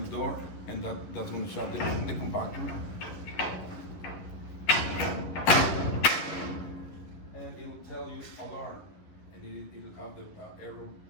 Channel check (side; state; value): right; late; 11 ms